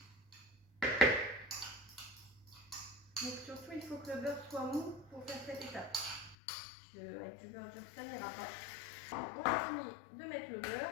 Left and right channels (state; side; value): drops out; right; at 6.4 s